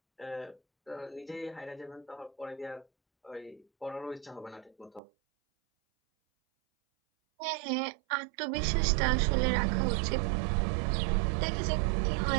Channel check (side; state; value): left; drops out; at 5.0 s